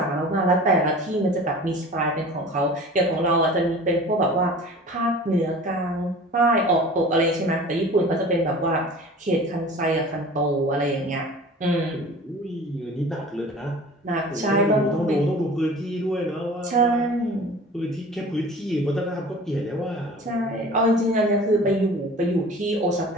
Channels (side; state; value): both; normal; correlation 0.41